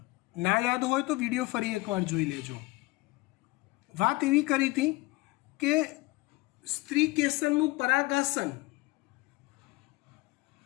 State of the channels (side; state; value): right; quieter; 21.9 dB